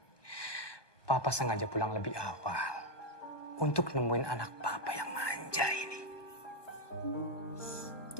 Papa sengaja pulang lebih awal untuk nemuin anak Papa yang manja ini.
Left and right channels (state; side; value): late; right; 1.2 ms